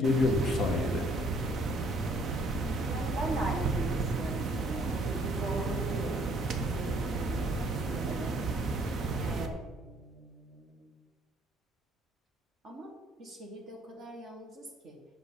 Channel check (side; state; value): both; normal; correlation 0.62